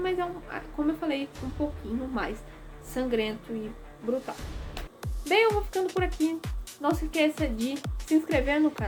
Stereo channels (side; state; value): both; identical; correlation 1.00